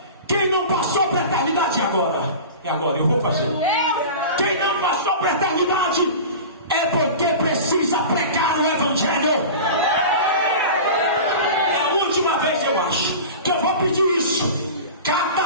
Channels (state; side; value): inverted; both; correlation -0.33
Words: quem não passou para a eternidade agora, é agora, eu vou fazer. Quem não passou para a eternidade é porque precisa pregar o Evangelho. acho que eu vou pedir isso. Cata